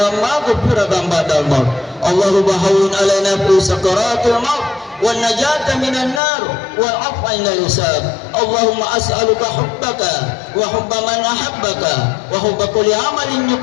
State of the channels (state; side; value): drops out; right; at 6.2 s